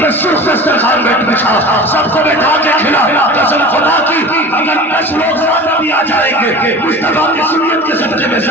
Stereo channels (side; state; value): both; normal; correlation 0.36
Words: پہ سرخ دسترخوان بچھا, سب کو بیٹھا کے کھلا. قسم خدا کی اگر 10 لوگ زیادہ بھی آ جائیں گے, مصطفیٰ کی سنت کے صدقے میں